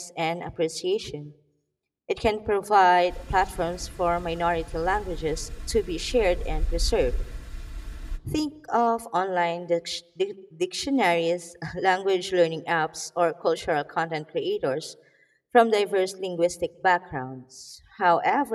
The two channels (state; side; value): identical; both; correlation 1.00